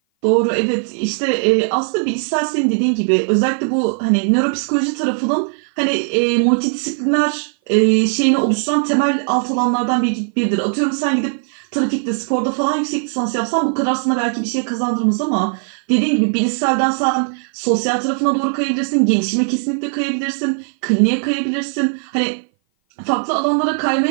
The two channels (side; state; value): left; silent; 57 dB below the other